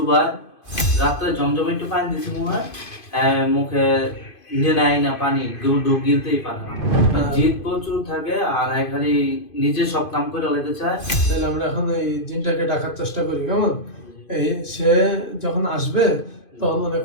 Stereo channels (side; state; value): right; late; 2.5 ms